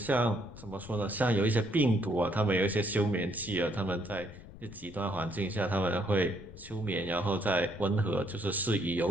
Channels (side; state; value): left; noise; rumble, 17 dB below the sound